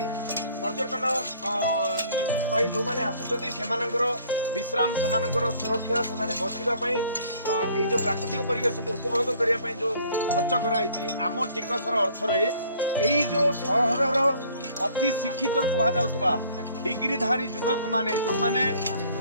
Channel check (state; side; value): inverted; both; correlation -0.57